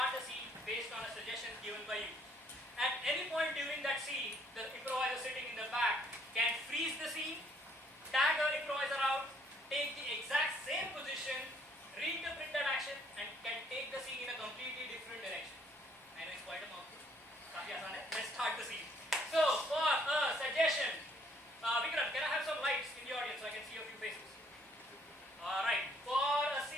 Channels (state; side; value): normal; both; correlation 0.64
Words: a scene based on a suggestion given by you. At any point during that scene, the improviser sitting in the back can freeze the scene, tag our improviser out, take the exact same position, reinterpret that action, and can take the scene in a completely different direction. I know it's quite a mouthful. Let's start the scene. So, for a suggestion, Vikram, can I have some lights in the audience so I can see a few faces? Alright, for a